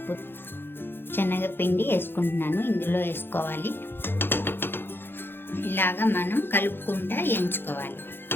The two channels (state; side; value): late; right; 0.10 ms